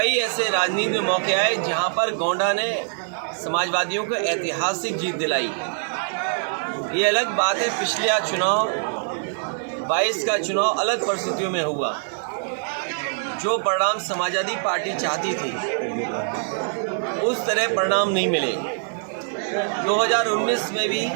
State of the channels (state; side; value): silent; left; digital silence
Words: ऐसे राजनीति में मौके आए जहाँ पर गोंडा ने समाजवादियों को ऐतिहासिक जीत दिलाई। ये अलग बात है, पिछला चुनाव 22 का चुनाव अलग परिस्थितियों में हुआ। जो परिणाम समाजवादी पार्टी चाहती थी उस तरह परिणाम नहीं मिले। 2019 में भी